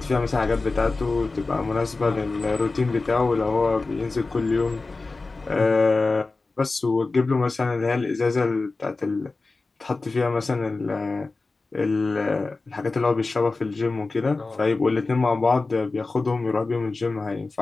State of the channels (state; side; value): quieter; right; 3.6 dB